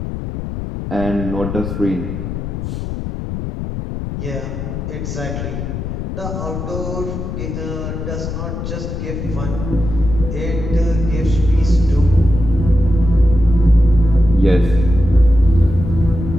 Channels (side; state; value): left; noise; rumble, 6 dB below the sound